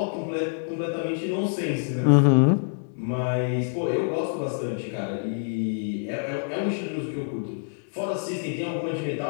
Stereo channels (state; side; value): silent; right; 61 dB below the other